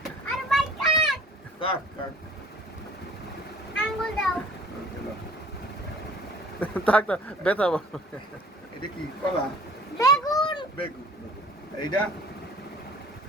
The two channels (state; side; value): normal; both; correlation 0.50